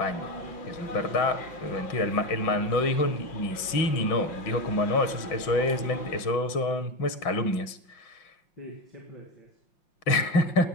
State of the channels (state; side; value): late; right; 5.7 ms